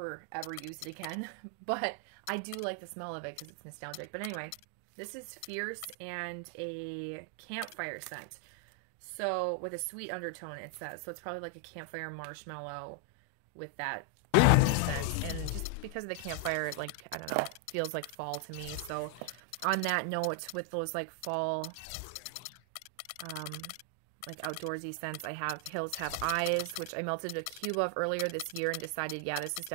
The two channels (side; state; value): both; different; correlation 0.00